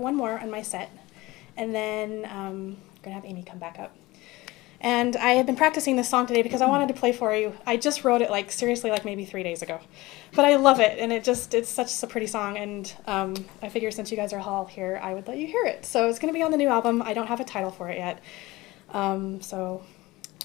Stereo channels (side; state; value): right; quieter; 20.2 dB